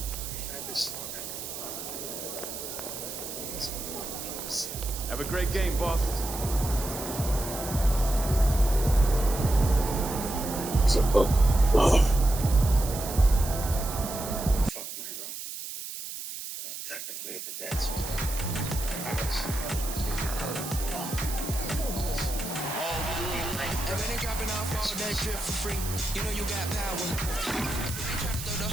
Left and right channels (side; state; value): right; noise; hiss, 8 dB below the sound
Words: We've had this long. Have a great game, boss. What's up, bud? Fuck my bro. Technically, the dad's and when they dropping off all that drip for free, you know you got power. They try to throw the